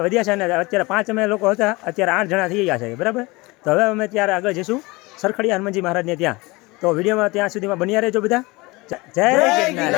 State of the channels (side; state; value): right; quieter; 23.4 dB